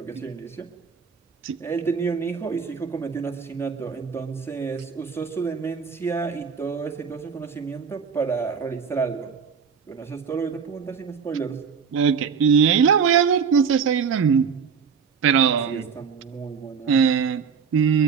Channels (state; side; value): quieter; left; 6.4 dB